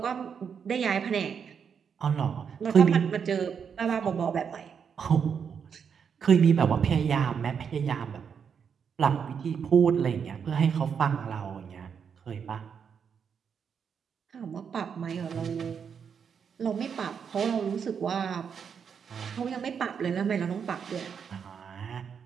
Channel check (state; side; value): quieter; left; 7.0 dB